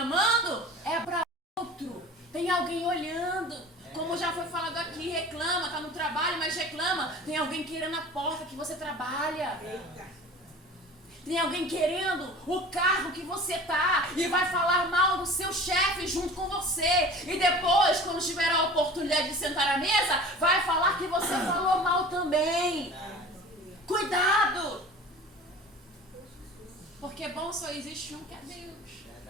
é pra outro. Tem alguém olhando. Como já foi falado aqui, reclama, tá no trabalho, mas reclama. Tem alguém querendo a porta que você trabalha. Tem alguém querendo o carro que você tá e vai falar mal do seu chefe junto com você. E depois, quando tiver a oportunidade de sentar à mesa, vai falar que você falou mal também. Cuidado! Porque bom só existe um, que é Deus.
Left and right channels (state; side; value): normal; both; correlation 0.40